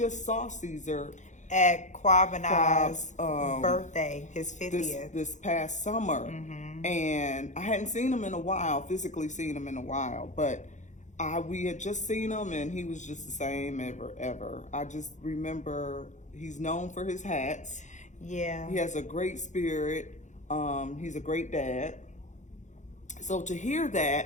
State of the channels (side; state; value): right; late; 0.35 ms